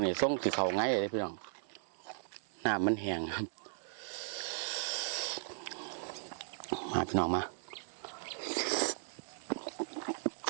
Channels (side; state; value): left; silent; 53 dB below the other